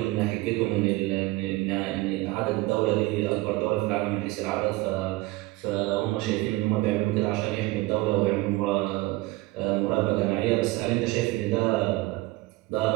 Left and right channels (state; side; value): quieter; left; 20.3 dB